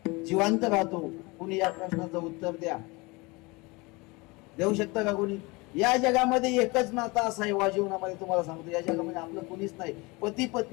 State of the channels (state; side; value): quieter; right; 25.3 dB